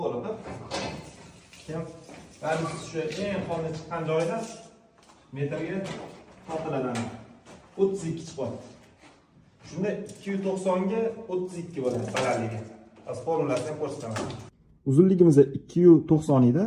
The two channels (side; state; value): both; identical; correlation 1.00